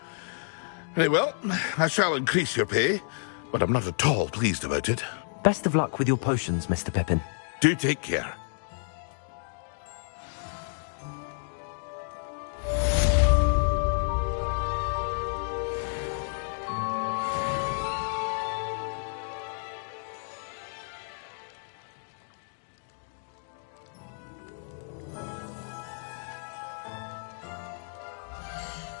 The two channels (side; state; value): right; silent; digital silence